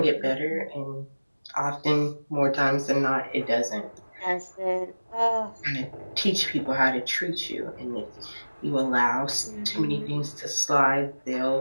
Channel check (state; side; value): inverted; both; correlation -1.00